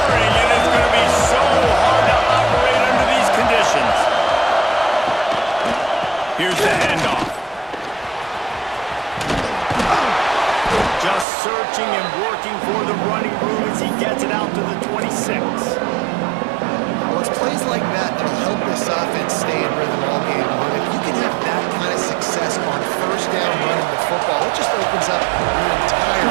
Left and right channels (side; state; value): left; drops out; at 11.2 s